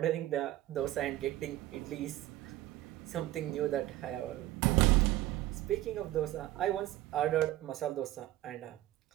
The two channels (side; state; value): left; quieter; 15.4 dB